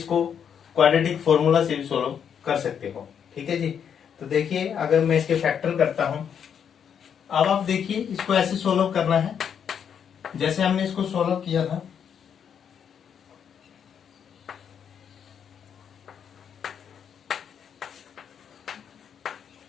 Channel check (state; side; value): quieter; right; 7.9 dB